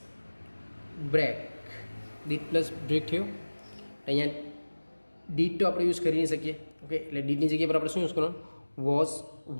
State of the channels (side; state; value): both; inverted; correlation -1.00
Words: બ્રેક થયું. અહીંયા ડીડ તો આપણે યુઝ કરી નહીં શકીએ. ઓકે, એટલે ડીડની જગ્યા પર આપણે શું યુઝ કરવાનું વોઝ